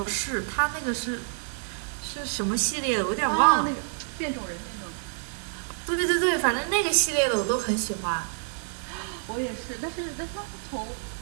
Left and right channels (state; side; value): silent; left; 59 dB below the other